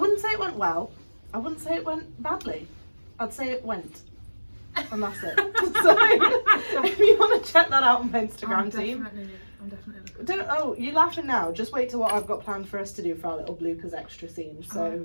say it went well. I wouldn't say it went badly. I'd say it went. And that's it. So, if you want to check that out on my Instagram team. I'm definitely looking. You're laughing now. Just wait till what I've got planned for us to do for our little bloopers extra scene. So, okay.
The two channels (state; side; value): inverted; both; correlation -1.00